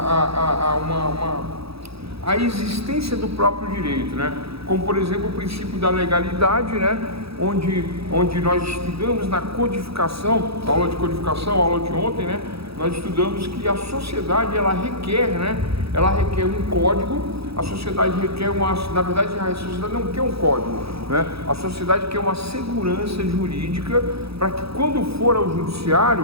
a existência do próprio direito, né? Como, por exemplo, o princípio da legalidade, né? Onde nós estudamos na codificação, aula de codificação, aula de ontem, né? Nós estudamos que a sociedade, ela requer, né? Ela requer um código. A sociedade requer na verdade, a sociedade não quer um código, né? A sociedade quer uma segurança jurídica para que quando for ao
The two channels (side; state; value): left; late; 0.77 ms